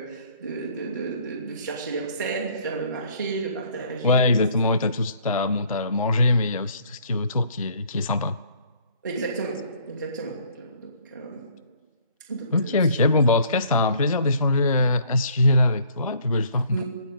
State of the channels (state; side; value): inverted; both; correlation -0.59